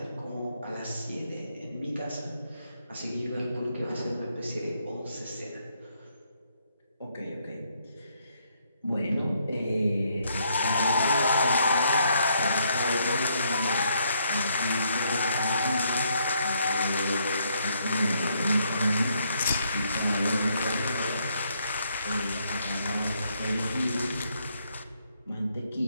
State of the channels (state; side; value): inverted; both; correlation -0.73